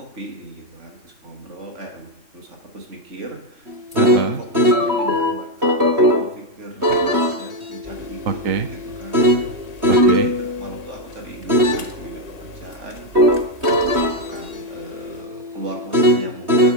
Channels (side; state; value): left; late; 3.2 ms